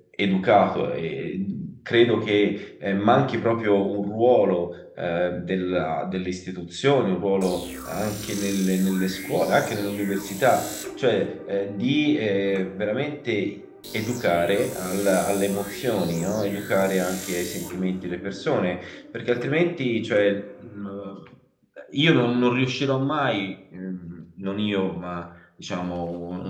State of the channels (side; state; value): both; identical; correlation 1.00